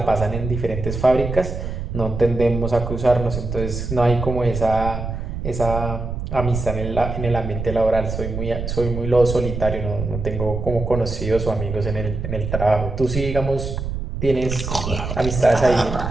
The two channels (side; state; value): right; noise; rumble, 5 dB below the sound